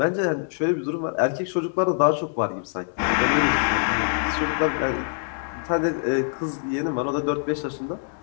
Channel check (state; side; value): silent; right; digital silence